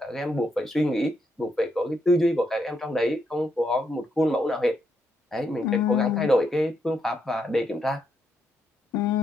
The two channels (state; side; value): normal; both; correlation 0.78